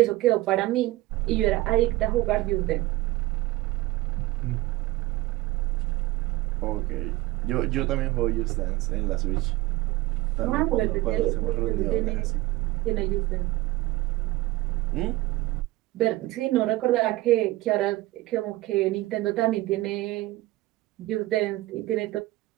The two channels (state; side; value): quieter; left; 18.5 dB